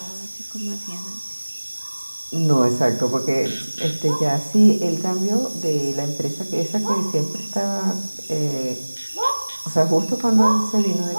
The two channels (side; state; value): both; inverted; correlation -1.00